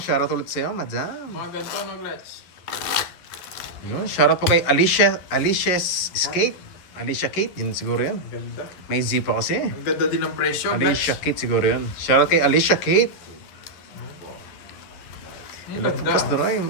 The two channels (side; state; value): right; late; 11 ms